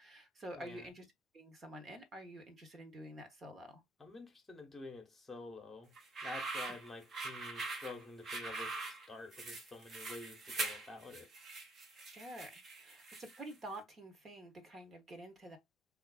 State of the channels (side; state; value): both; normal; correlation 0.67